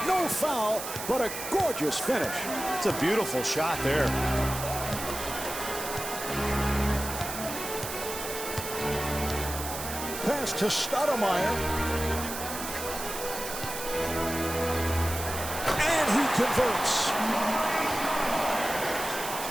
No foul, but a gorgeous finish. It's a beautiful shot there. Pass to Stoudemire. And he converts.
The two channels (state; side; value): noise; right; hiss, 7 dB below the sound